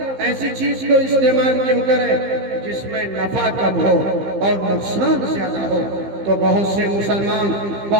ایسی چیز کو استعمال کیوں کرے جس میں نفع کم ہو اور نقصان زیادہ ہو۔ تو بہت سے مسلمان،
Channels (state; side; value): late; left; 15 ms